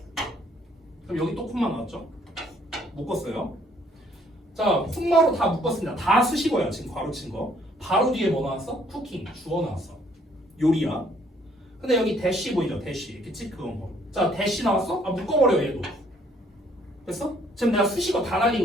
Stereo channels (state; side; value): normal; both; correlation 0.63